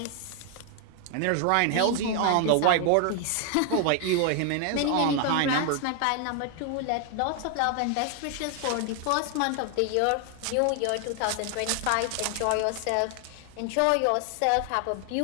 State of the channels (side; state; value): both; different; correlation 0.00